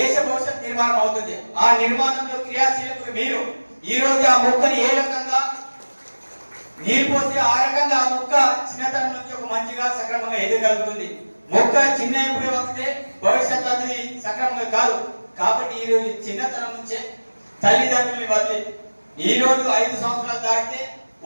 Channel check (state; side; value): inverted; both; correlation -1.00